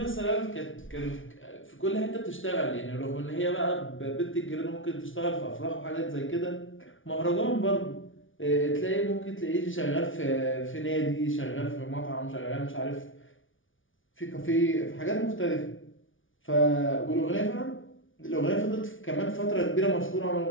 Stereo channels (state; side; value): late; right; 0.57 ms